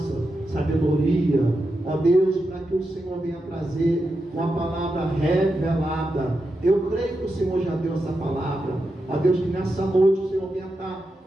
sabedoria, ó Deus, para que o Senhor venha trazer uma palavra revelada. Eu creio que o Senhor já deu essa palavra, ó Deus, que nessa noite o Senhor venha estar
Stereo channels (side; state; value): both; normal; correlation 0.88